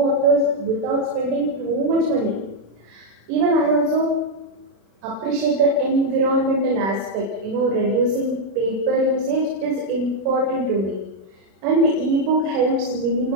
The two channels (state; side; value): late; left; 36 ms